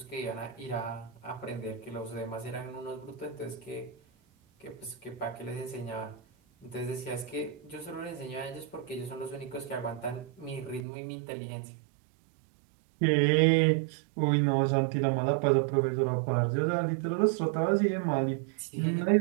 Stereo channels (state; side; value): drops out; left; at 10.8 s